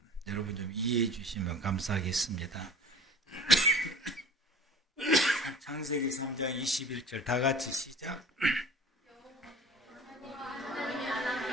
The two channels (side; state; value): both; normal; correlation 0.42